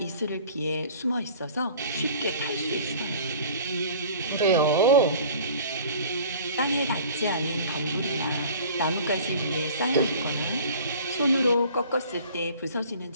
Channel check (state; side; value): inverted; both; correlation -0.46